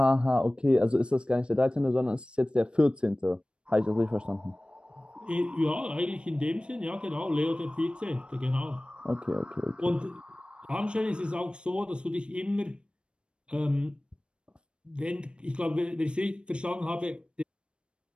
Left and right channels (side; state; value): left; late; 0.056 ms